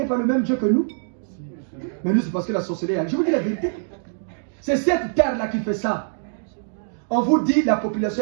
par le même Dieu que nous. Mais nous, c'est parce que la sorcellerie. Je vous dis la vérité. C'est cette terre-là qui fait ça. On vous dit la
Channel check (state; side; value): silent; left; digital silence